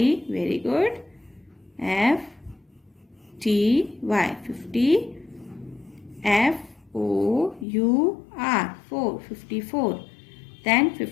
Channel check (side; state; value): right; drops out; at 7.7 s